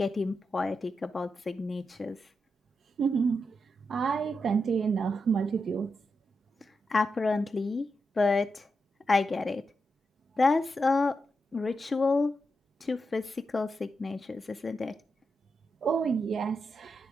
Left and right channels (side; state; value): both; normal; correlation 0.86